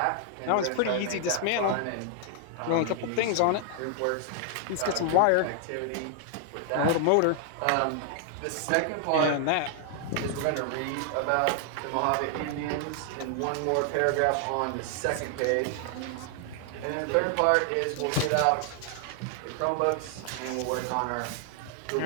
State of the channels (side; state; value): both; different; correlation 0.00